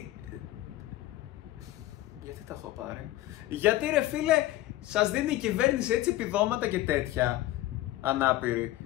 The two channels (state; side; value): quieter; right; 15.8 dB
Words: τα έχω πάρει? Γιατί ρε φίλε σας δίνει η κυβέρνηση έτσι επιδόματα και τέτοια ανάπηροι